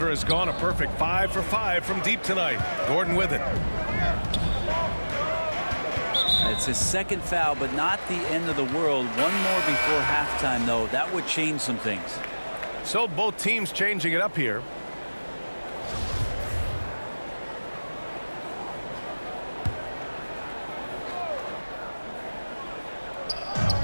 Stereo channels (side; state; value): both; inverted; correlation -1.00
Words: has gone a perfect 5 for 5 from deep tonight. Gordon with it. It's his second foul, but not the end of the world. One more before halftime, though. That would change some things. So both teams changing it up here.